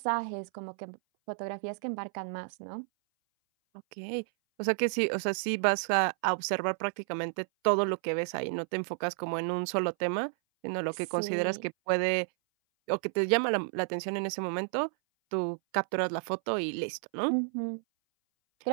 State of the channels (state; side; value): silent; left; 57 dB below the other